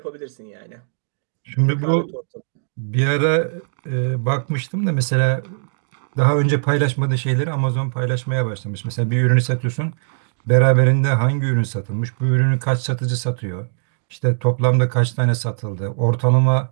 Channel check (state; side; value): silent; left; digital silence